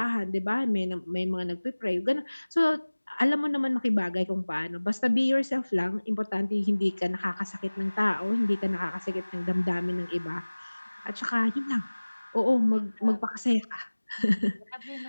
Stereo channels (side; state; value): both; inverted; correlation -1.00